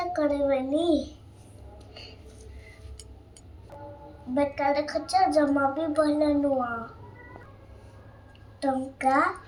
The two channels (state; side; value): identical; both; correlation 1.00